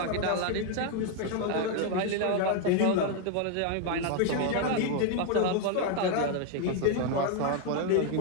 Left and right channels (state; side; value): different; both; correlation 0.01